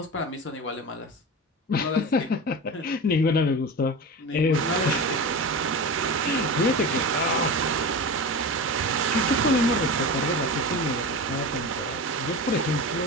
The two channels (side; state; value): both; normal; correlation 0.27